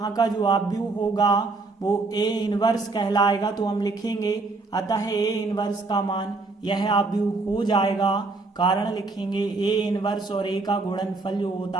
का जो आव्यूह होगा वो A इनवर्स कहलाएगा। तो हम लिखेंगे अतः A इनवर्स का मान यह आव्यूह हो जाएगा। कारण लिखेंगे A इनवर्स और A का गुणनफल जो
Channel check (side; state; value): left; quieter; 3.6 dB